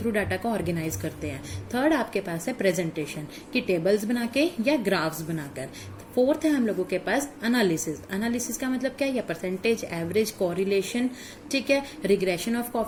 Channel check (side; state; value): both; identical; correlation 1.00